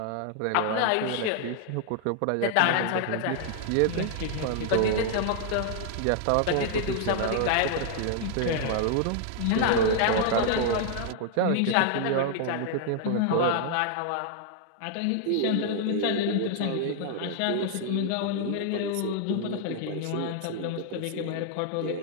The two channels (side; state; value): both; different; correlation 0.00